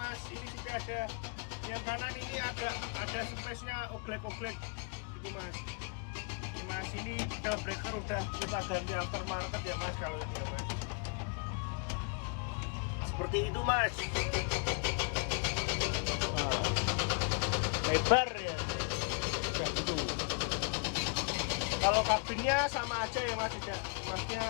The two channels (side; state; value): right; quieter; 37.5 dB